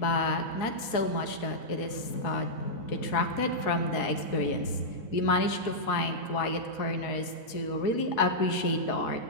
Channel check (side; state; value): right; late; 4.7 ms